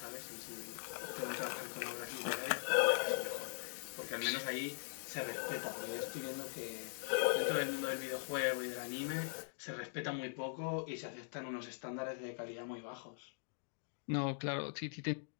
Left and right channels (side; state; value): right; silent; digital silence